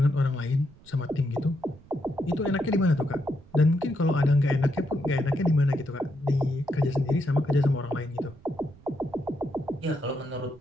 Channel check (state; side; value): noise; right; rumble, 24 dB below the sound